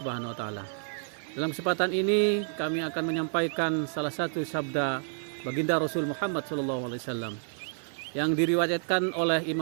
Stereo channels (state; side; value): silent; left; 57 dB below the other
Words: wa taala. Dalam kesempatan ini kami akan menyampaikan salah satu sabda baginda Rasul Muhammad SAW yang diriwayatkan oleh